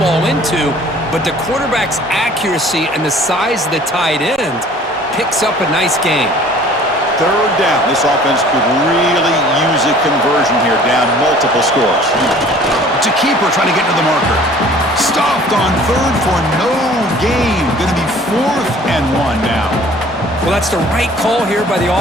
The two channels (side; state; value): both; normal; correlation 0.51